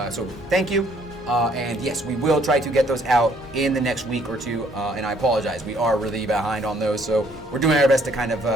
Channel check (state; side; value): normal; both; correlation 0.64